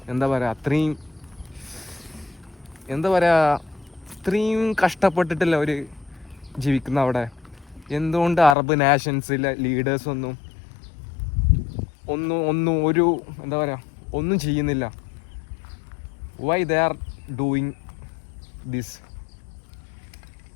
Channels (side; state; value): right; drops out; at 8.6 s